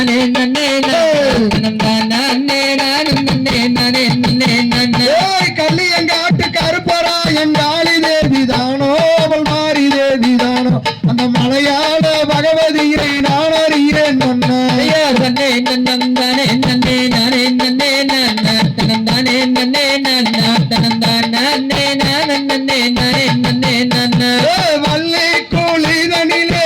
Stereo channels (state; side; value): identical; both; correlation 1.00